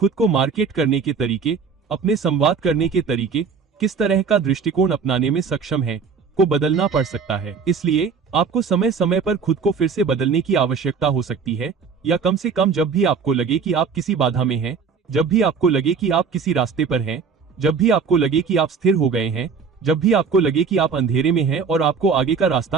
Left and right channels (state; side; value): quieter; left; 5.7 dB